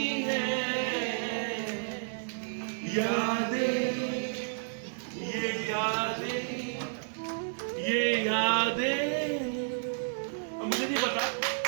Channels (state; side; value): silent; left; 55 dB below the other